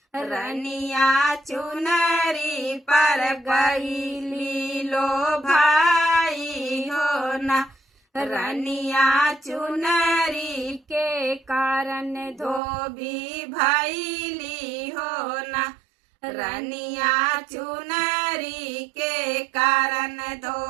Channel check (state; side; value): drops out; left; at 12.6 s